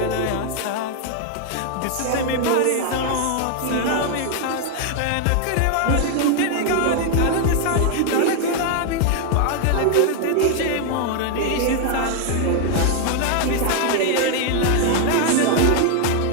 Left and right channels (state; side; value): different; both; correlation 0.00